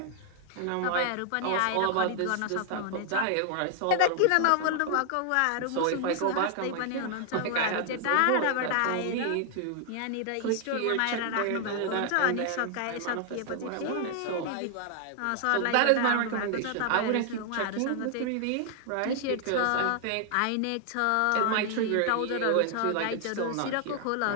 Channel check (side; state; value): both; different; correlation 0.00